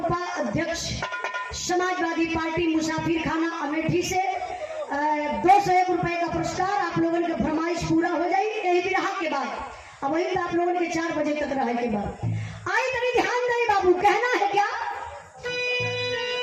समाजवादी पार्टी मुसाफिर खाना अमेठी से 201 रुपए का पुरस्कार। आप लोगों की फरमाइश पूरा हो जाए यही बिरहा के बाद, अब वही तो आप लोगों के 4 बजे तक रहे के बाद। आई तभी ध्यान दे बाबू, कहना है क्या?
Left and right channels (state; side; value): identical; both; correlation 1.00